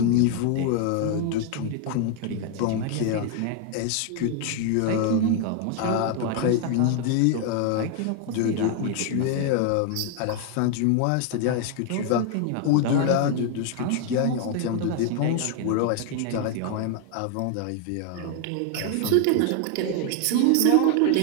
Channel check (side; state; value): both; different; correlation 0.00